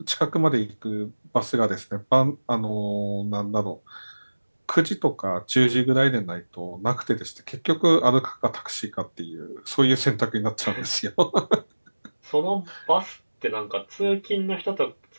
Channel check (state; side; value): inverted; both; correlation -1.00